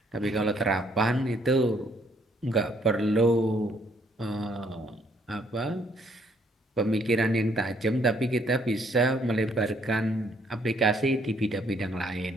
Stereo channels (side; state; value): both; normal; correlation 0.67